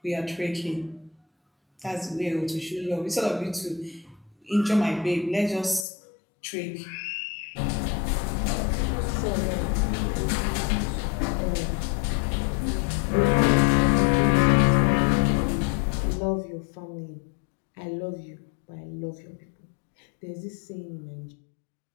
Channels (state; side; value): drops out; right; at 5.9 s